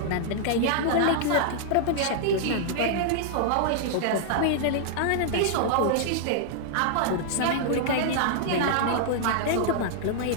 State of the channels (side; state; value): both; different; correlation -0.01